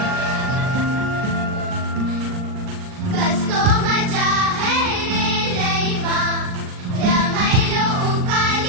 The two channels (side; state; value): left; late; 39 ms